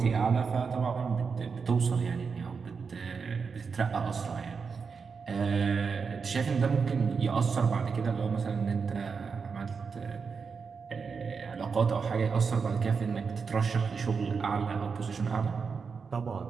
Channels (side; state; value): left; quieter; 5.4 dB